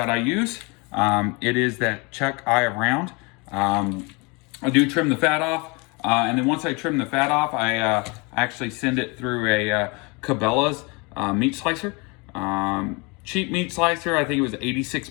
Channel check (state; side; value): quieter; right; 28.9 dB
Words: I use. It is that chuck eye around. I do trim the fat off, and then once I trim the fat off, I actually send it through a Cabela's meat slicer. Cheap meat slicer, I think it was 86